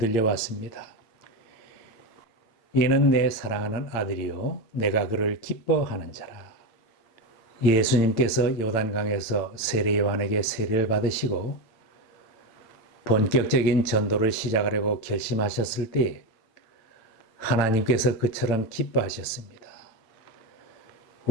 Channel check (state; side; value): late; right; 8.9 ms